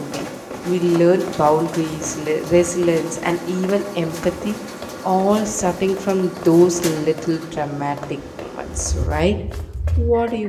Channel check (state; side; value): identical; both; correlation 1.00